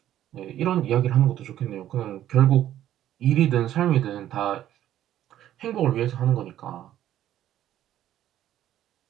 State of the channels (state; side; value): quieter; left; 12.1 dB